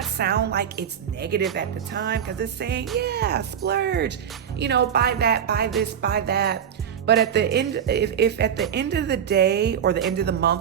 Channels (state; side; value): quieter; left; 8.6 dB